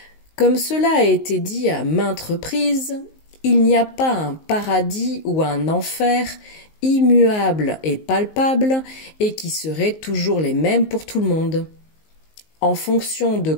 Comme cela a été dit à maintes reprises, il n'y a pas un paradis ou un enfer immuable et palpable et qui seraient toujours les mêmes pour tout le monde. En fonction de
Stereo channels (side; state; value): right; late; 19 ms